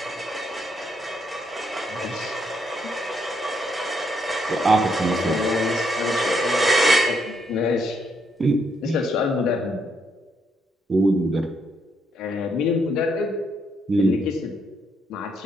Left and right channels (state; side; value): normal; both; correlation 0.75